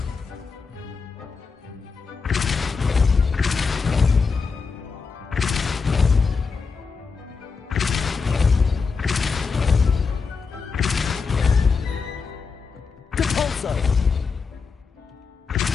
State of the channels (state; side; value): quieter; right; 5.0 dB